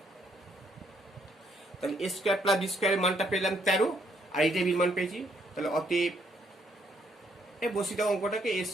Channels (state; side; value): normal; both; correlation 0.70